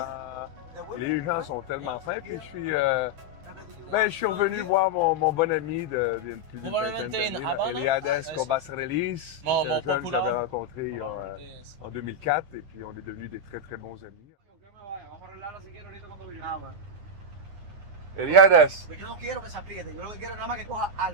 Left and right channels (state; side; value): late; left; 9.8 ms